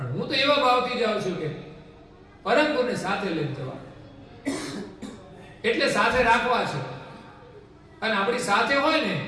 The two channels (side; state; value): both; identical; correlation 1.00